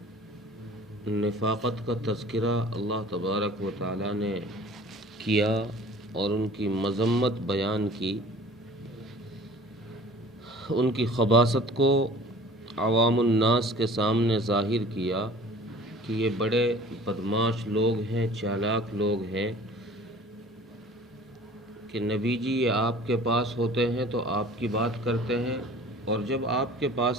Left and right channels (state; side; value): normal; both; correlation 0.47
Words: نفاقت کا تذکرہ اللہ تبارک و تعالیٰ نے کیا اور ان کی مذمت بیان کی، ان کی خباثت کو عوام الناس کے سامنے ظاہر کیا کہ یہ بڑے بدماش لوگ ہیں، چالاک لوگ ہیں کہ نبی جی یہ آپ کے پاس ہوتے ہیں تو آپ کی بات کرتے ہیں، اور جب آپ کے پاس